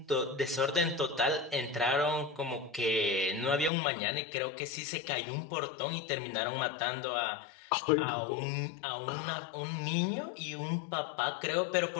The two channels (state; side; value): drops out; right; at 3.7 s